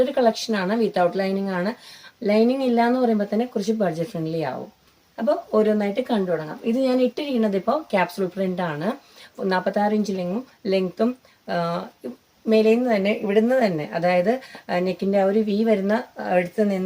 കളക്ഷൻ ആണ്, വിത്തൗട്ട് ലൈനിങ് ആണ്. ലൈനിങ് ഇല്ല എന്ന് പറയുമ്പോൾ തന്നെ കുറച്ച് ബഡ്ജറ്റ് ഫ്രണ്ട്ലി ആവും. അപ്പോൾ ഓരോന്നായിട്ട് കണ്ടു തുടങ്ങാം. ഇത് ഞാൻ ഇട്ടിരിക്കുന്നത് ഇപ്പോൾ ക്യാപ്സൂൾ പ്രിന്റ് ആണ്. 46 ഇഞ്ച് ലെങ്ത്തും മേലേന്ന് തന്നെ ഇവിടുന്ന് തന്നെ, അതായത് നെക്കിന്റെ ആ ഒരു വി വരുന്ന അടുത്ത്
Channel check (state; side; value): identical; both; correlation 1.00